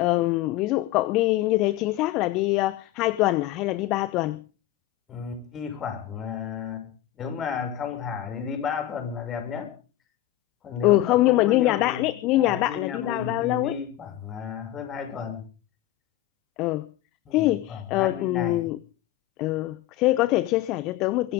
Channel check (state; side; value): quieter; right; 14.2 dB